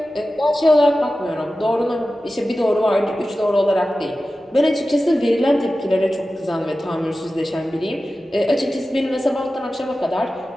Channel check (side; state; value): both; normal; correlation 0.94